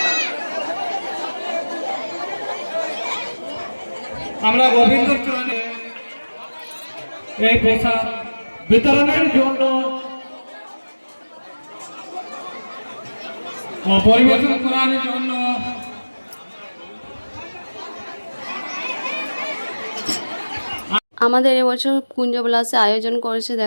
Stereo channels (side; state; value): both; inverted; correlation -1.00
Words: আমরা গোবিন্দর চরণে এই পোশাক বিতরণের জন্য পরিবেশন করার জন্য আমাদের এবছর কুঞ্জবিলাসে আয়োজন করেছে